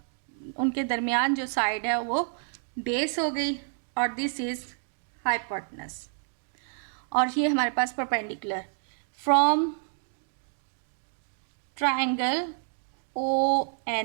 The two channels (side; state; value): left; silent; 59 dB below the other